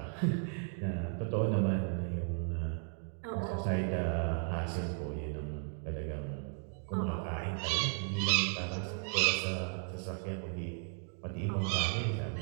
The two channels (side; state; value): left; silent; 54 dB below the other